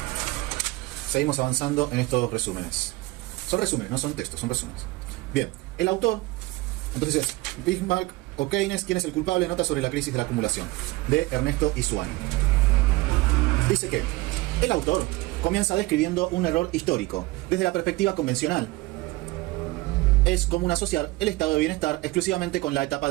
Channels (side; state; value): left; quieter; 21.1 dB